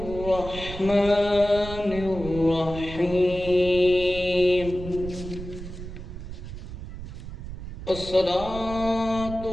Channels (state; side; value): noise; right; rumble, 10 dB below the sound